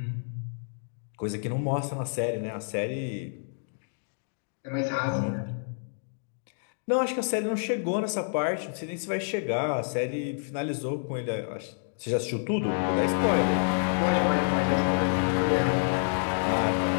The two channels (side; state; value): right; silent; digital silence